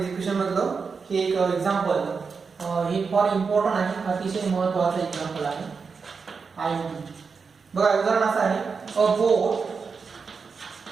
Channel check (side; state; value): left; quieter; 5.2 dB